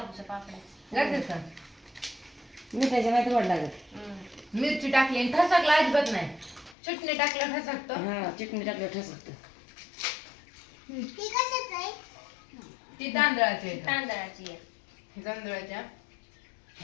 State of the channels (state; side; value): drops out; right; at 6.8 s